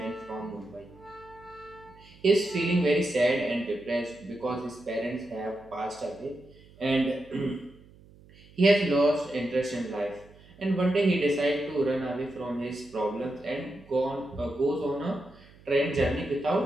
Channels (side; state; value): right; noise; hum, 24 dB below the sound